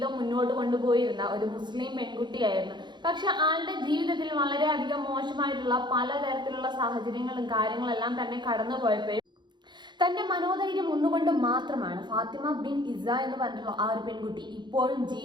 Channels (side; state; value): left; late; 0.22 ms